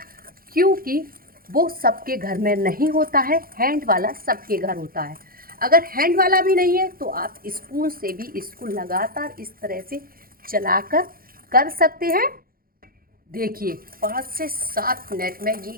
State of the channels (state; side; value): late; left; 0.42 ms